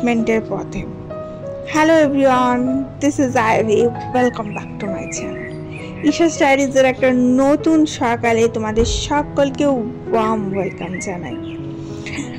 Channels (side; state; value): both; identical; correlation 1.00